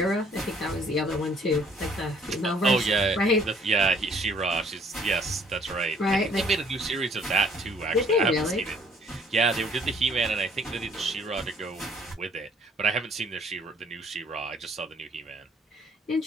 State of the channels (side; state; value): both; normal; correlation 0.61